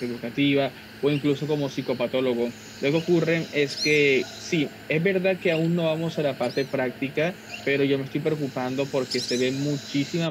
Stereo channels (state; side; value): identical; both; correlation 1.00